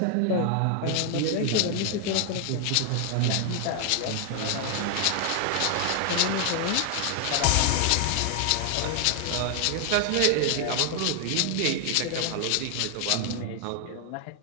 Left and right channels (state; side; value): different; both; correlation 0.00